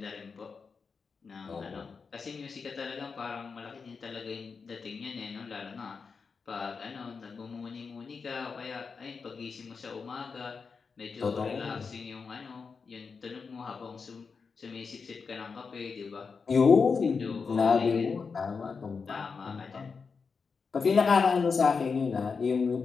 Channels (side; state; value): right; quieter; 5.2 dB